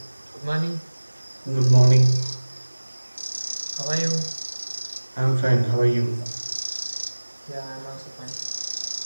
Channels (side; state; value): both; inverted; correlation -1.00